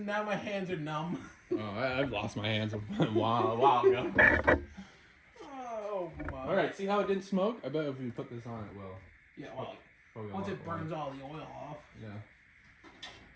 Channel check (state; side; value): identical; both; correlation 1.00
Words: now my hands are numb. Oh, I've lost my hands a while ago. Oh, my. All right, see how it didn't smoke? I bet if we put this on, it will. Yeah, well, Probably a once lot it burns all the oil off. Yeah.